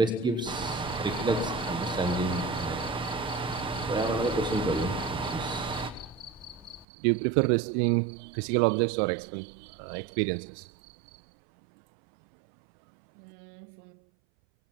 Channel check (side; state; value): left; drops out; at 6.9 s